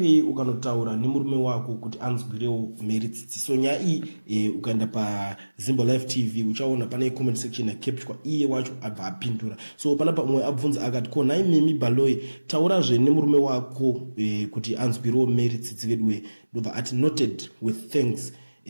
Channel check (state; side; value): inverted; both; correlation -1.00